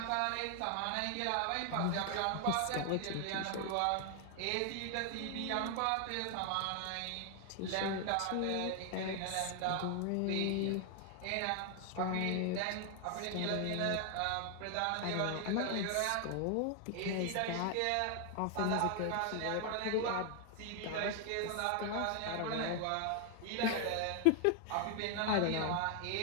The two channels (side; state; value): both; different; correlation 0.00